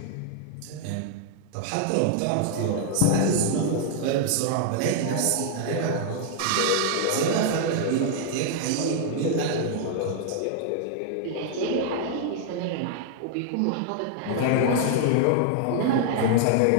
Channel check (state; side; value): different; both; correlation 0.00